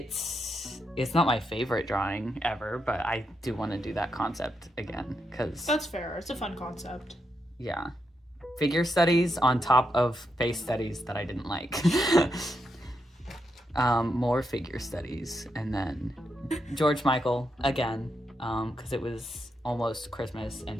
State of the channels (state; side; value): normal; both; correlation 0.83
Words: not my favorite drawing ever, but I do want to do that concept again, because That's fair. It's a fun concept. yeah, figure studies on top of face studies that I didn't like. More figure studies, and then George Michael again, because it was almost Christmas and